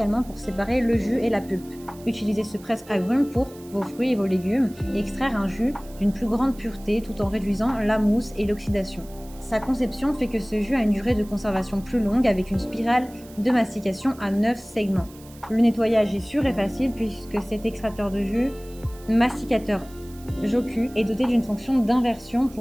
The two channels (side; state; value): right; noise; hiss, 23 dB below the sound